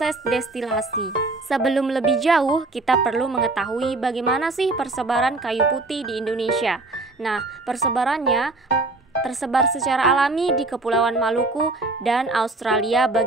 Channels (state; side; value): quieter; left; 3.2 dB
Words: destilasi. Sebelum lebih jauh, kita perlu mengetahui bagaimana sih persebaran kayu putih di Indonesia. Nah, persebarannya tersebar secara alami di Kepulauan Maluku dan Australia